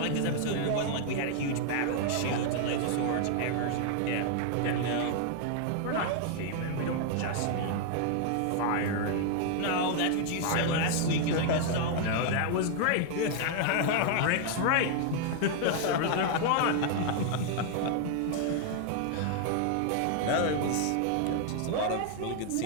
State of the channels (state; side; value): different; both; correlation 0.00